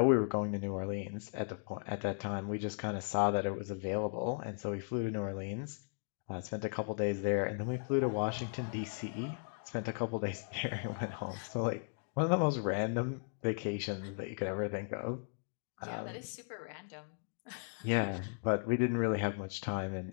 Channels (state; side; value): silent; right; digital silence